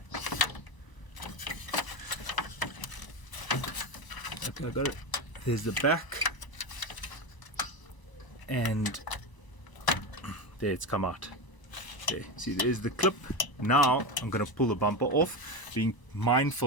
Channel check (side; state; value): right; late; 1.0 ms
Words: Okay, I got it. There's the back, and there it's come out. There, see, there's the clip. Now I'm going to pull the bumper off, being